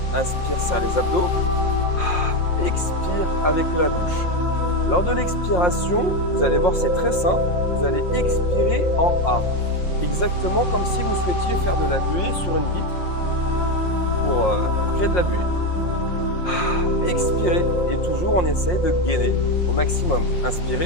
Inspire, serre les abdos. Expire avec la bouche. Lors de l'expiration, vous allez voir, c'est très simple. Vous allez expirer en A. Exactement comme si vous souhaitiez faire de la buée sur une vitre pour créer de la buée. Expirez et toujours on essaye de gainer au maximum.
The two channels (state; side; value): late; right; 5.6 ms